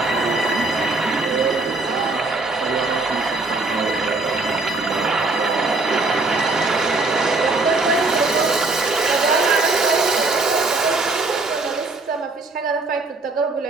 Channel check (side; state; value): left; quieter; 3.4 dB